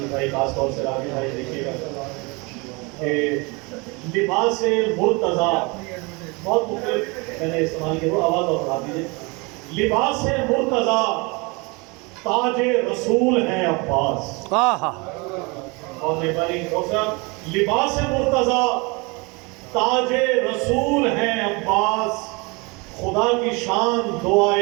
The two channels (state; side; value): quieter; left; 27.8 dB